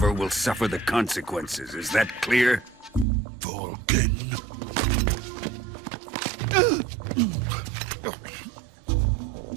will suffer the consequences. Is that clear? Volgin.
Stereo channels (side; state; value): left; drops out; at 3.1 s